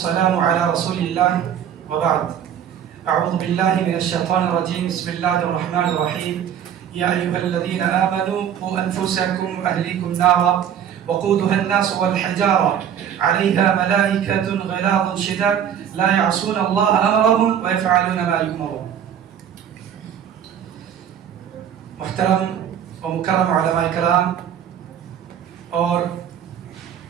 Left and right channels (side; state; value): left; quieter; 9.1 dB